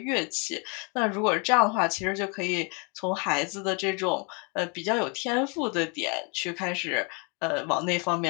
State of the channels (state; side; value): quieter; right; 33.7 dB